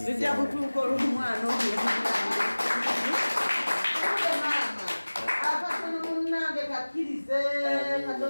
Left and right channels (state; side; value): inverted; both; correlation -1.00